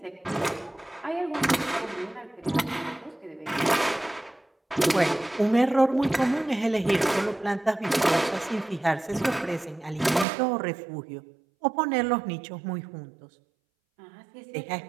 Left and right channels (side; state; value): left; drops out; at 10.2 s